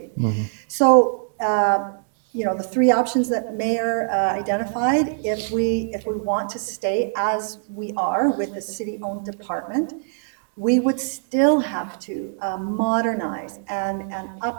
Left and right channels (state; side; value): silent; left; digital silence